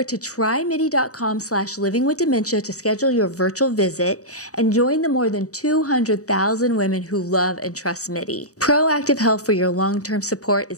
to trymidi.com/livingwithdementia to schedule your virtual visit and join the more than 200,000 women who love and trust MIDI. Proactive health for your long-term support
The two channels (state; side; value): late; right; 0.66 ms